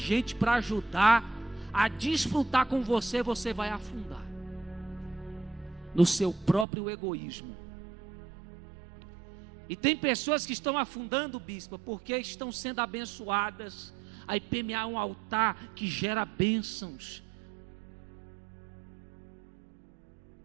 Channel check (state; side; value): drops out; left; at 6.7 s